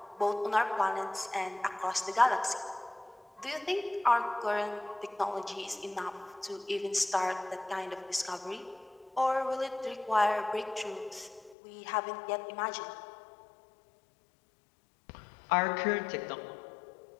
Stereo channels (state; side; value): drops out; right; at 11.6 s